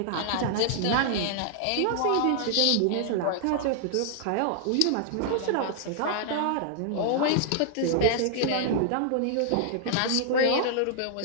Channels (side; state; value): both; different; correlation -0.01